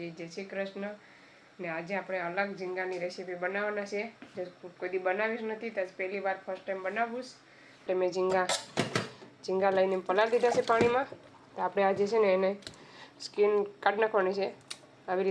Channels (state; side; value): identical; both; correlation 1.00